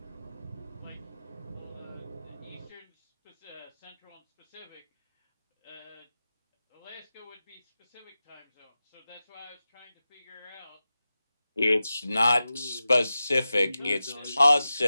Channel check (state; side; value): inverted; both; correlation -0.94